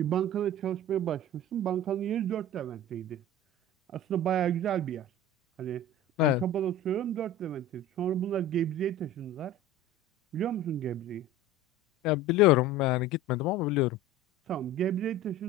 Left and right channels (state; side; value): normal; both; correlation 0.36